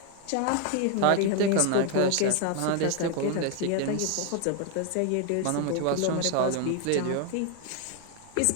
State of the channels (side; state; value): both; different; correlation 0.01